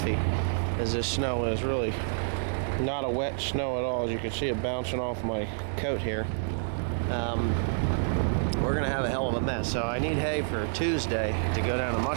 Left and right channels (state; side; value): silent; left; digital silence